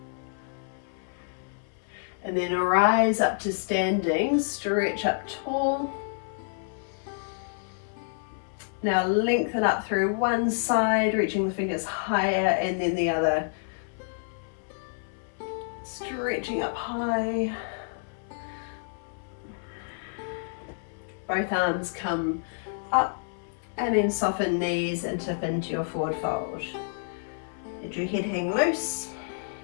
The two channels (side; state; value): right; silent; 59 dB below the other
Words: And then rise up to standing, stretch up tall. Now lengthen up through one side, reaching the fingers higher, and then the other. Stretching up high. Both arms come up, and then soften knees and tip into your forward fold. Let your head hang loose.